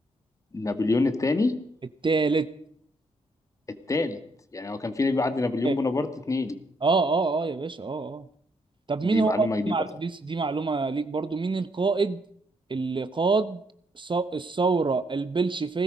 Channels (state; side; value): normal; both; correlation 0.73